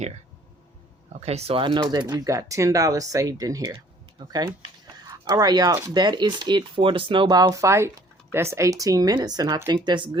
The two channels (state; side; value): normal; both; correlation 0.56